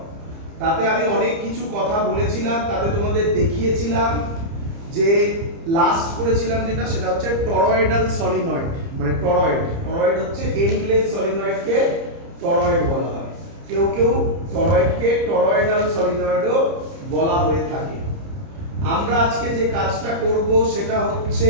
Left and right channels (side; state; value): left; late; 30 ms